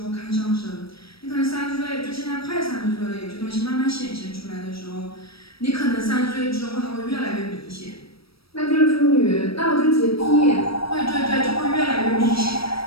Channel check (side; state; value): right; late; 0.76 ms